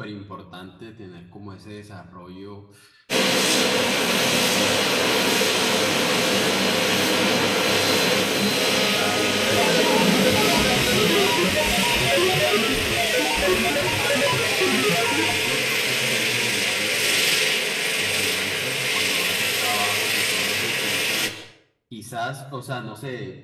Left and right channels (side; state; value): both; identical; correlation 1.00